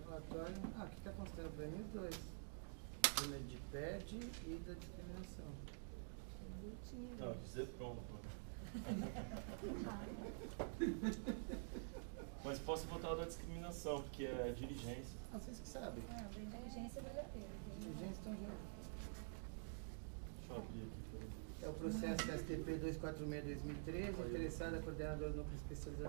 relatório. Ah, aqui está considerando para mim os 2. De PED e da discriminação. Não, dizer pronto. Mas posso votar o da discriminação, porque é diligência. Ah, vocês que sabem. Não, da inteligência vale a pena. Diligência estão juntos. Deixa eu abrir aqui. É o processo STP 246-2013, interessada coordenadora do Núcleo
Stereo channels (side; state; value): left; silent; digital silence